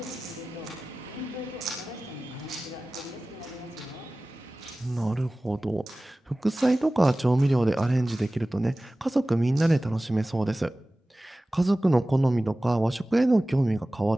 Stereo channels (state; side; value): normal; both; correlation 0.97